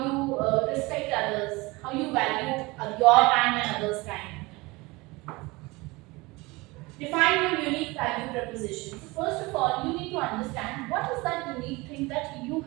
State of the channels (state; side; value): quieter; left; 23.3 dB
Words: you respect others, how you value your time and others' time. Define your unique value proposition. So first of all, you need to understand what is that unique thing that you